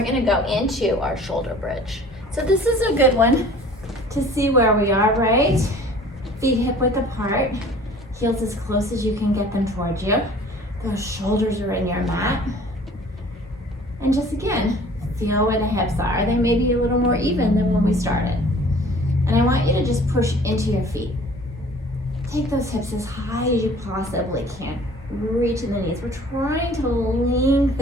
gonna go into our shoulder bridge. So this is a good one to see where we are, right? Feet hip width apart, heels as close as you can get them towards you. Those shoulders are in your mat. And just again, feel where the hips are. They may be a little more even than when we started. And I want you to just push into your feet. Take those hips as high as you possibly can. Reach in the knees. We're trying to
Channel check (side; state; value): both; normal; correlation 0.49